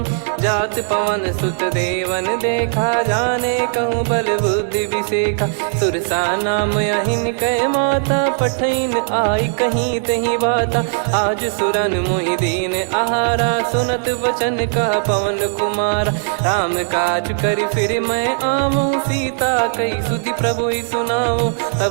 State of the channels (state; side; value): silent; left; 65 dB below the other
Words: जात पवन सुत देवन देखा जाने कहूँ बल बुद्धि विसेखा। सुरसा नाम अहिन कै माता पठैन आई कहीं तही बाता। आज सुरन मोहि दीन आहारा सुनत वचन कह पवन कुमारा। राम काज करि फिर मैं आवऊँ सीता कई सुधि प्रभु ही सुनाऊँ।